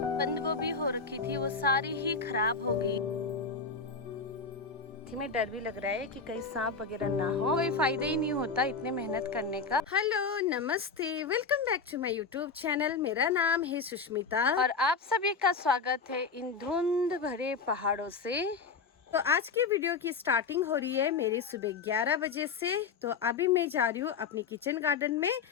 बंद गोभी हो रखी थी, वो सारी ही खराब हो गई। में डर भी लग रहा है कि कहीं सांप वगैरह ना हो। कोई फायदा ही नहीं होता इतने मेहनत करने का। हेलो नमस्ते, welcome back to my YouTube channel. मेरा नाम है सुष्मिता और आप सभी का स्वागत है इन धुंध भरे पहाड़ों से। तो आज की वीडियो की स्टार्टिंग हो रही है मेरी सुबह 11 बजे से। तो अभी मैं जा रही हूँ अपनी किचन गार्डन में।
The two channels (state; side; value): quieter; right; 5.0 dB